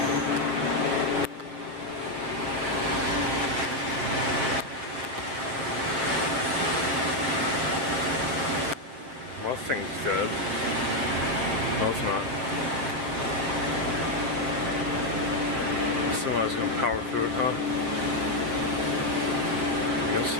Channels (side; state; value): left; late; 7.9 ms